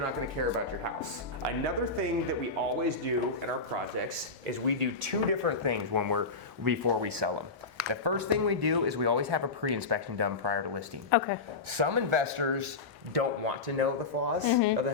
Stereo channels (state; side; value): quieter; right; 3.9 dB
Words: gonna care about your house. Another thing that we always do in our projects is we do two different things before we sell them. The first thing we do is we always have a pre-inspection done prior to listing. Okay. Some investors don't want to know the flaws of the